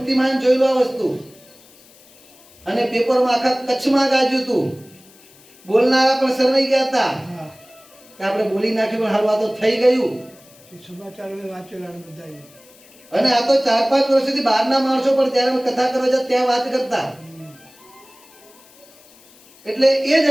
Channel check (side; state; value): left; noise; hiss, 26 dB below the sound